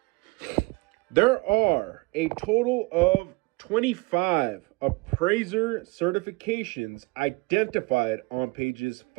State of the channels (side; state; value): left; quieter; 25.3 dB